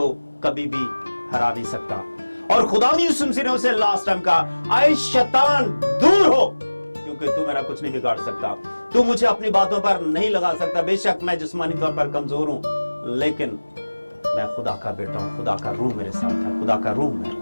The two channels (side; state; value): both; inverted; correlation -1.00